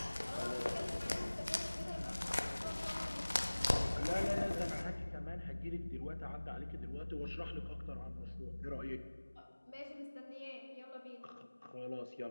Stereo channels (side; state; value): both; inverted; correlation -1.00